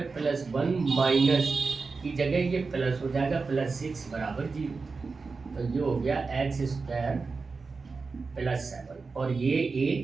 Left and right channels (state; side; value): quieter; left; 4.4 dB